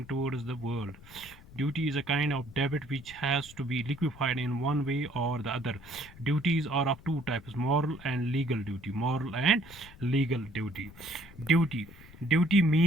towards the world. Duty is a kind of debt which has to be liquefied in one way or the other. Duties are of two types: moral and legal duty. Moral and legal duty. Duty. Duty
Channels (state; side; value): noise; left; rumble, 20 dB below the sound